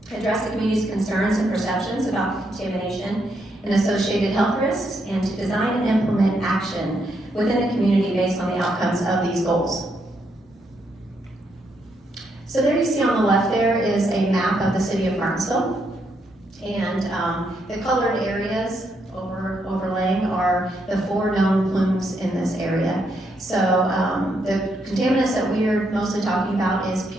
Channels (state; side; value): normal; both; correlation 0.78